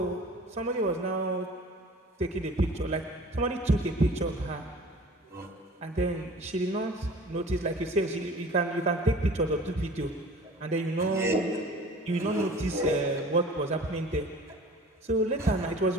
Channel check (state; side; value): normal; both; correlation 0.44